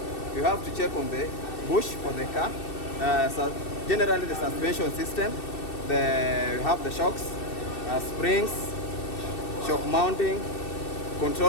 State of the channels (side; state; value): right; late; 2.6 ms